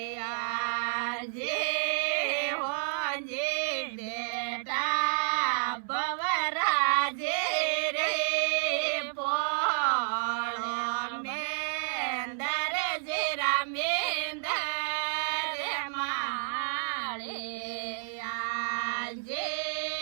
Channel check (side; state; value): left; silent; 58 dB below the other